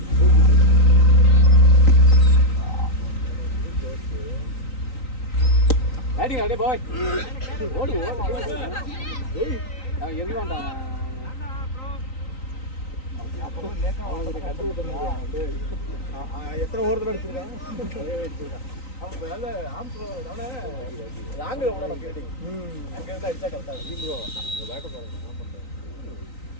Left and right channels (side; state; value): right; late; 3.9 ms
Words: அடி அடே பாய் ஓடு ஓடு ஏய் நான் எறி வேண்டாம். அப்புறம் லேக்கா அவனுக்கு கட்டு விட்டுறாங்க. எத்தனை ஓவர் அடிச்சிருக்காங்க? அவன் நல்ல ஆம்ஸ் அவனே ராங்கு அவனோட ஃபீல்டிங். அங்க இருந்து அடிச்சா கரெக்டா இருக்கும் ப்ரோ. அந்த பேக்க பாருங்க என்ன பண்றாங்க.